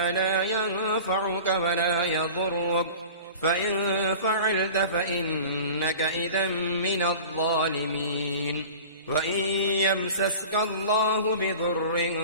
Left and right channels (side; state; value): both; inverted; correlation -0.38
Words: لا ينفعك ولا يضرك، فإن فعلت فإنك إذا من الظالمين. وإن يمسسك الله